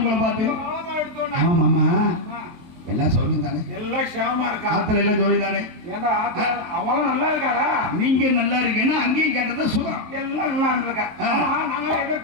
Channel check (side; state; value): left; late; 23 ms